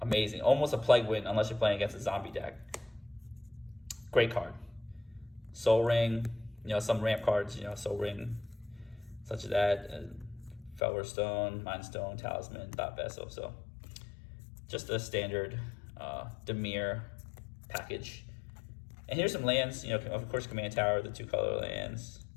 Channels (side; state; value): right; drops out; at 10.8 s